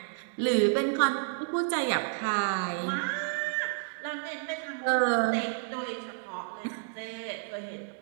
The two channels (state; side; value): silent; left; digital silence